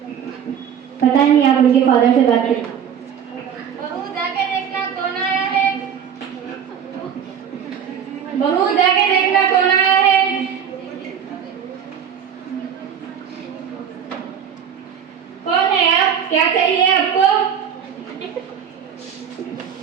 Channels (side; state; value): left; quieter; 8.2 dB